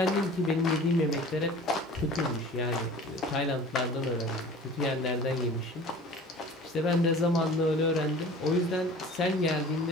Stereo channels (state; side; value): normal; both; correlation 0.43